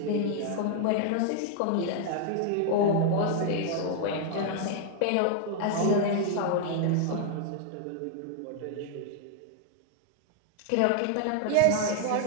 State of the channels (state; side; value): different; both; correlation 0.00